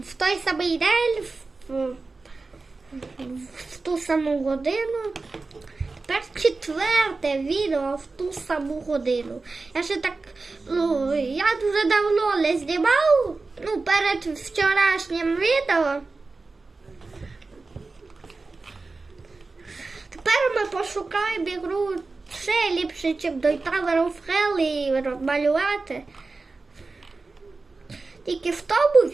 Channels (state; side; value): quieter; left; 3.8 dB